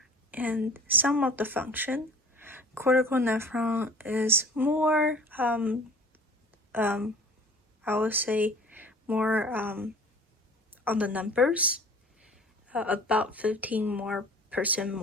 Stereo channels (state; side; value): normal; both; correlation 0.45